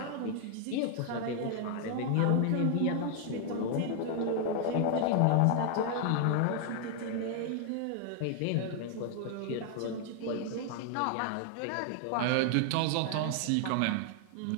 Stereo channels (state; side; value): different; both; correlation 0.00